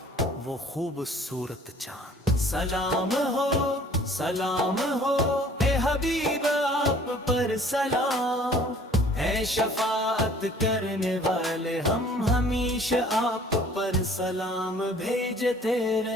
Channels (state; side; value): normal; both; correlation 0.53